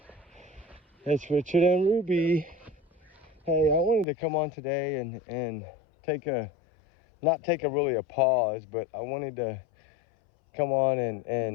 It's Richard and Ruby. Hey, I wanted to come on today and not take a pause, but I wanted to come on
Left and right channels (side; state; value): right; drops out; at 4.0 s